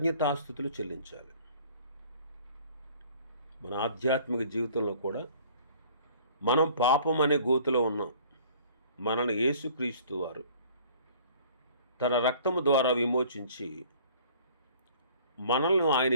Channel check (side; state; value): both; inverted; correlation -0.52